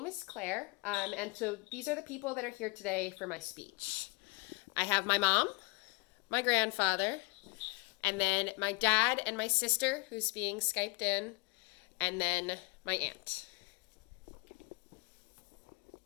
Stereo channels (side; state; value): right; quieter; 26.8 dB